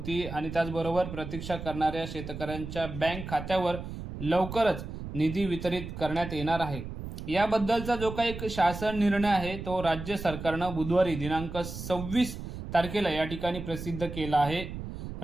आणि त्याचबरोबर प्रतीक्षा करणाऱ्या शेतकऱ्यांच्या बँक खात्यावर लवकरच निधी वितरित करण्यात येणार आहे। याबद्दलचा जो काही शासन निर्णय आहे तो राज्य सरकारनं बुधवारी दिनांक 26 तारखेला या ठिकाणी प्रसिद्ध केला आहे।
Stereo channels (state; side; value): noise; right; rumble, 8 dB below the sound